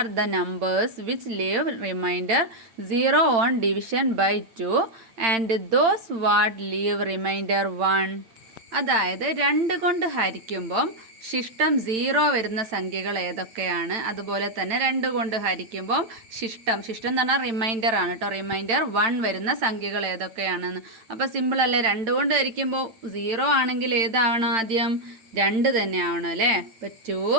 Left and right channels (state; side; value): late; left; 8.9 ms